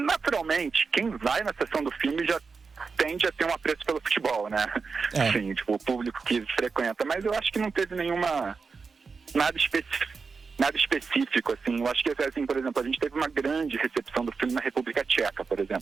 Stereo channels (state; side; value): quieter; left; 4.9 dB